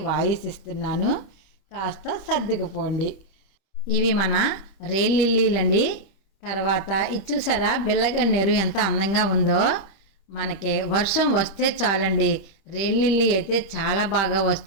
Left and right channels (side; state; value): right; late; 25 ms